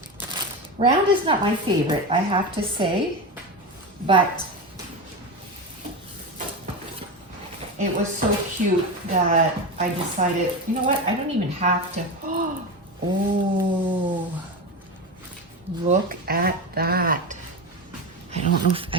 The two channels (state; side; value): normal; both; correlation 0.20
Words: Round is not my favorite, I have to say, but it was so cute that I decided, you know what, I don't even have to. Oh, look at that. I don't know if,